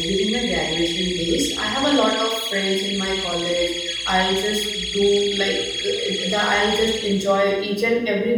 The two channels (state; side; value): identical; both; correlation 1.00